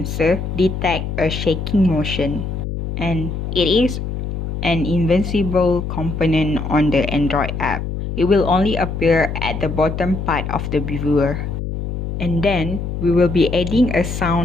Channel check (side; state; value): left; noise; hum, 4 dB below the sound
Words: detects a shaking motion, and it is an invisible component on the Android app. It will only appear at the bottom part of the viewer. And then, we will be adding a